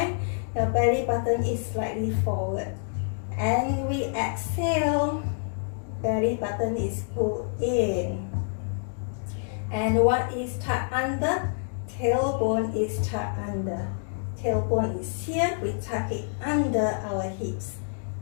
Your belly button is slightly forward. And we exhale, belly button is pulled in. And what is tucked under? Tailbone is tucked under. Tailbone is here, we tuck it under our hips.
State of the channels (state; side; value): silent; right; digital silence